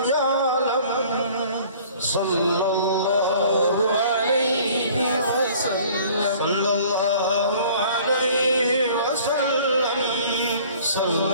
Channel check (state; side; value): inverted; both; correlation -0.51